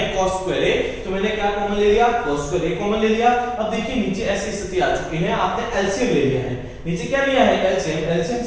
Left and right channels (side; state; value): both; identical; correlation 1.00